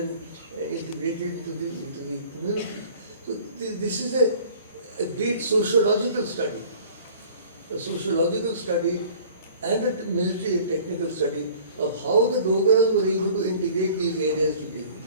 integrated into the community? So this is a great sociological study, and a military and technical study of how the Dogras were able to integrate these areas today.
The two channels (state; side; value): inverted; both; correlation -0.49